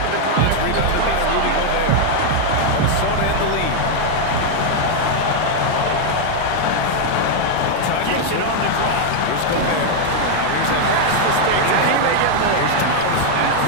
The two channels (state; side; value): different; both; correlation 0.00